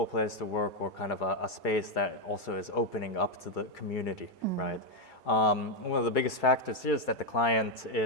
place to work, or kind of a space that also is opening up to the community, right? One of the biggest factors here is that the client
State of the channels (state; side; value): late; right; 2.3 ms